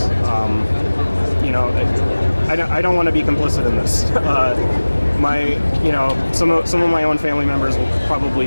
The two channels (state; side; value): inverted; both; correlation -1.00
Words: I don't want to be complicit in this. Some of my own family members will probably